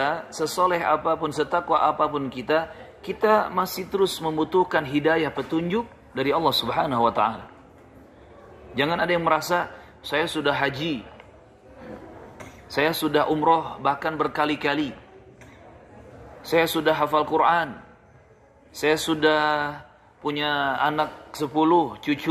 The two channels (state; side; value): identical; both; correlation 1.00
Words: sesoleh apapun, setakwa apapun kita, kita masih terus membutuhkan hidayah, petunjuk dari Allah Subhanahu wa ta'ala. Jangan ada yang merasa, saya sudah haji, saya sudah umroh bahkan berkali-kali, saya sudah hafal Quran, saya sudah punya anak 10,